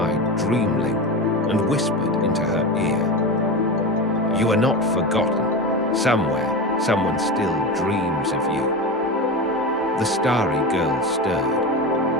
Dreamling and whispered into her ear. You are not forgotten. Somewhere, someone still dreams of you. The starry girl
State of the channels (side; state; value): both; normal; correlation 0.23